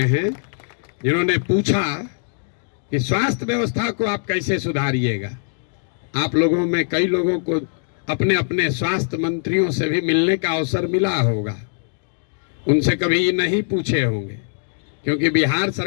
जिन्होंने पूछा कि स्वास्थ्य व्यवस्था को आप कैसे सुधारिएगा, आप लोगों में कई लोगों को अपने अपने स्वास्थ्य मंत्रियों से भी मिलने का अवसर मिला होगा। उनसे कभी नहीं पूछे होंगे, क्योंकि बिहार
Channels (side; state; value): right; silent; digital silence